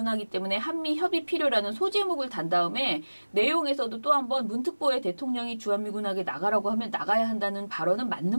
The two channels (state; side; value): inverted; both; correlation -1.00